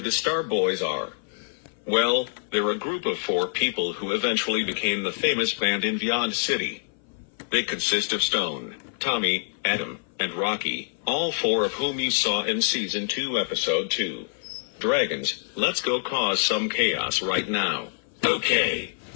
the Star Boys are. Well, they're a group of 4 people who eventually became the famous band in Beyond City. They consist of Stone, Tommy, Adam, and Rocky, all 4 of whom you saw in Season 2, Episode 2. Dragons, let's go cause some chaos right now. Okay.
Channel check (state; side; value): silent; right; 58 dB below the other